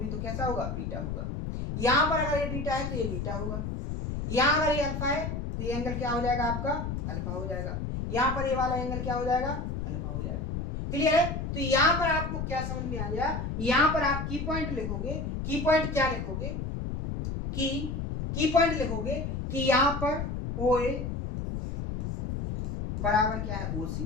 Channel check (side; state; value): left; noise; rumble, 4 dB below the sound